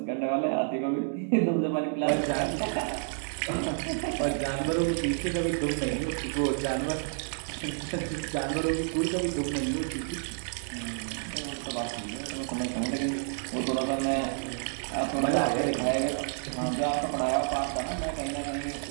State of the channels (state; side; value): silent; left; 58 dB below the other